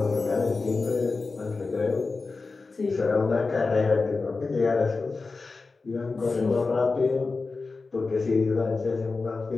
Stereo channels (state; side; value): quieter; right; 4.0 dB